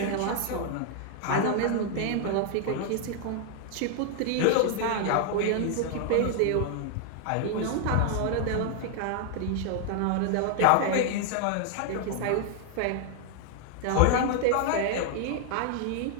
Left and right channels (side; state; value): both; different; correlation 0.00